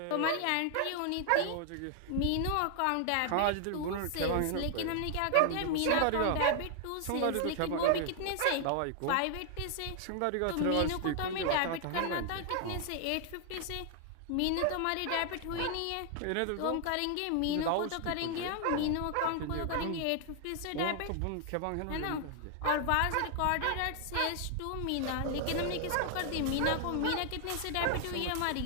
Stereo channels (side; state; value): both; different; correlation 0.00